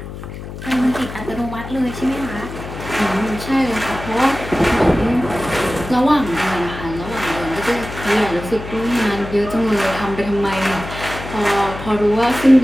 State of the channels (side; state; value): left; noise; hum, 11 dB below the sound